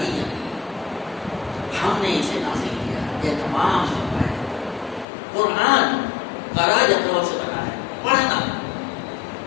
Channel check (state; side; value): drops out; right; at 5.1 s